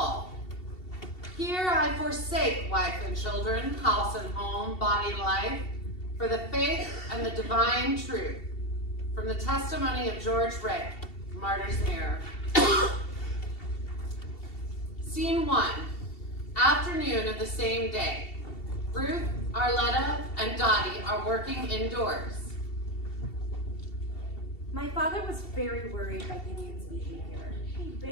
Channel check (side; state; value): right; late; 2.7 ms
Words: Here I forsake wife and children, house and home, body life, for the faith and the divine truth. From the testimony of George Rick, Martyr's Mirror. Scene 1, afternoon of the same day. Ruth, Arletta, and Dottie are working indoors. My father was very worried by Gideon's behavior. He